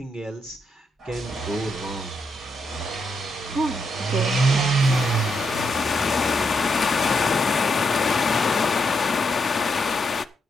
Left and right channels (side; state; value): both; normal; correlation 0.80